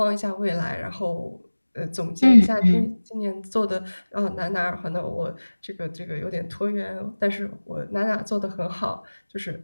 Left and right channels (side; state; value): both; inverted; correlation -1.00